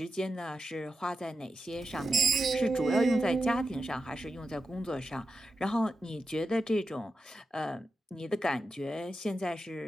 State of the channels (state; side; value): normal; both; correlation 0.90